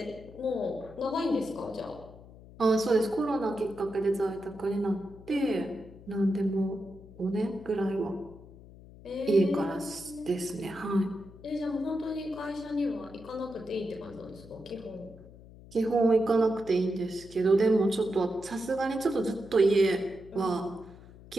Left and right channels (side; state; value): left; noise; hum, 19 dB below the sound